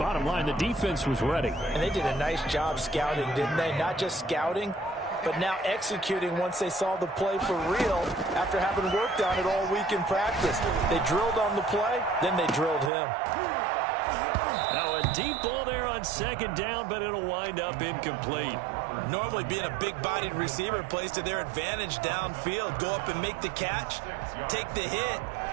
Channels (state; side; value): drops out; left; at 12.9 s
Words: line, the defense was ready. And they did a nice job scouting, didn't they? Not just scouting, but now executing once they saw the play for real after having worked on it all week in practice. They drilled on the play, then they drilled him. Now a deep ball there on 2nd down, but it'll wind up incomplete. Normally being a big-bodied receiver plays to their advantage downfield. Go up and make the catch, take the hit,